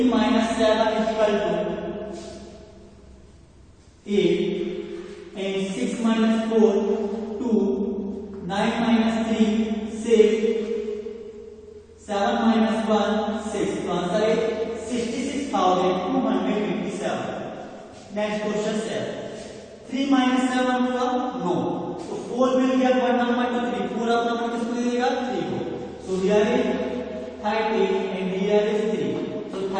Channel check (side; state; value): both; identical; correlation 1.00